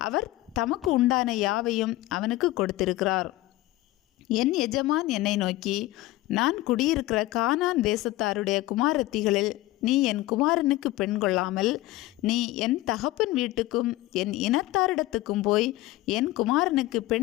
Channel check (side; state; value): right; quieter; 17.3 dB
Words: அவர் தமக்கு உண்டான யாவையும் அவனுக்கு கொடுத்திருக்கிறார். என் எஜமான் என்னை நோக்கி, நான் குடியிருக்கிற கானான் தேசத்தாருடைய குமாரத்திகளில் நீ என் குமாரனுக்கு பெண் கொள்ளாமல் நீ என் தகப்பன் வீட்டுக்கும் என் இனத்தாரிடத்துக்கும் போய் என் குமாரனுக்கு